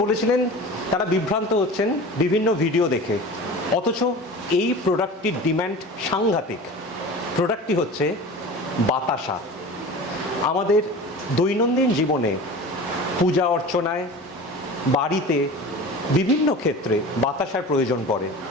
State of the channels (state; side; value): normal; both; correlation 0.35